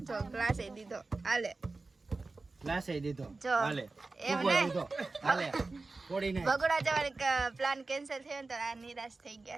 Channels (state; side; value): quieter; left; 3.6 dB